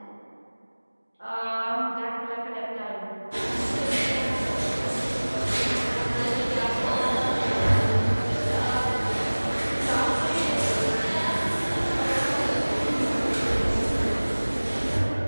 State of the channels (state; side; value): inverted; both; correlation -1.00